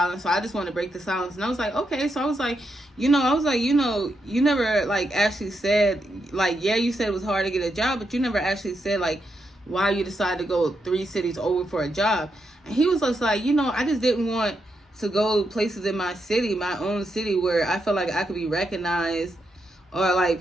so I just wanted to break the silence. And I was like, okay. So I was like, you never like actually said, like, yeah, you said it was hard to get a job, but you never actually said like why you decided to go 3 cities over for a job. And he was just like, I just didn't want to go places in my city, my own city, where I felt like I could be recognized or like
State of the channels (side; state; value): both; normal; correlation 0.83